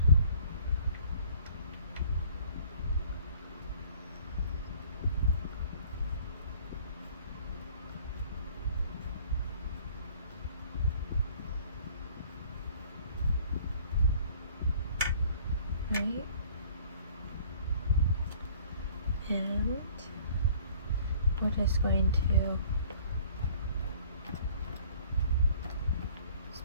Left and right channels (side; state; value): both; inverted; correlation -0.53